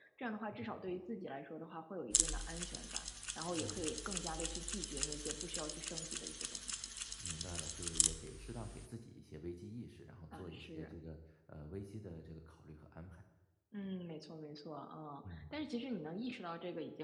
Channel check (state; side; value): identical; both; correlation 1.00